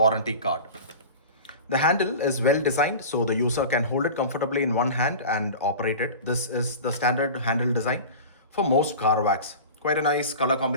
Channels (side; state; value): both; inverted; correlation -0.34